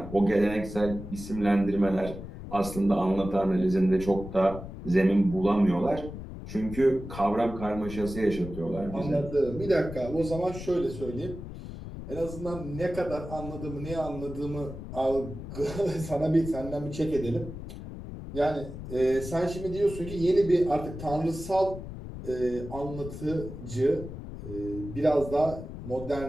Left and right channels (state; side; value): noise; left; rumble, 10 dB below the sound